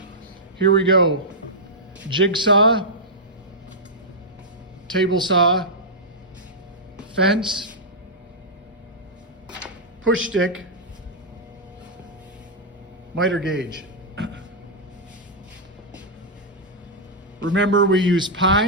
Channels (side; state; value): both; normal; correlation -0.09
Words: Here we go. Jigsaw, table saw, fence, push stick, miter gauge. Remember, we use